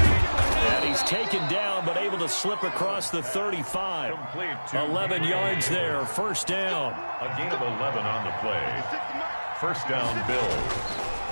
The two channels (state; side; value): inverted; both; correlation -1.00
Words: He's taken down, but able to slip across the 35. 11 yards there, 1st down. A gain of 11 on the play. 1st down, Bills.